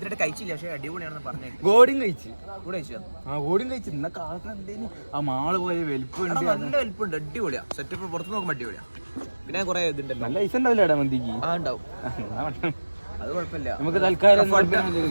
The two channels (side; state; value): both; inverted; correlation -1.00